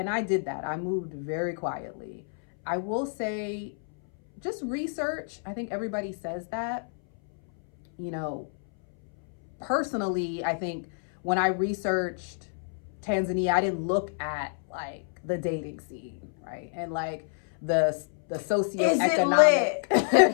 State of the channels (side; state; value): right; silent; 59 dB below the other